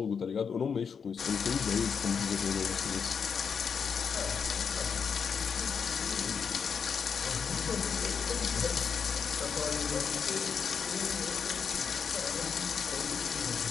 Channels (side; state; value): right; quieter; 6.4 dB